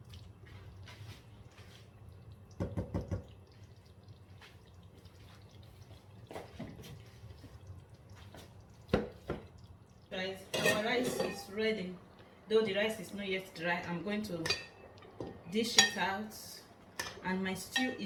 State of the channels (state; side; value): identical; both; correlation 1.00